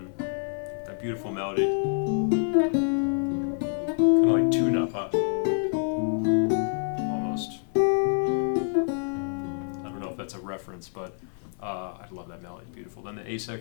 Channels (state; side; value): silent; right; 56 dB below the other